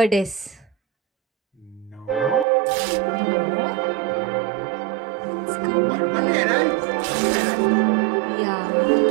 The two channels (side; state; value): left; drops out; at 2.5 s